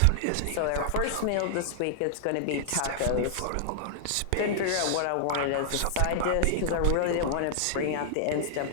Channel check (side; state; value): both; different; correlation -0.01